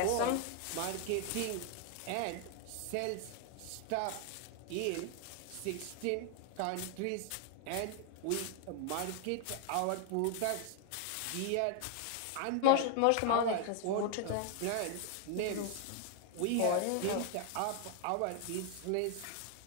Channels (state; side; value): different; both; correlation 0.00